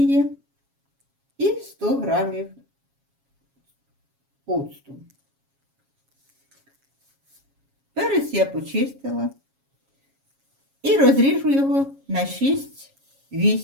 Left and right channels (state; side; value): late; left; 7.3 ms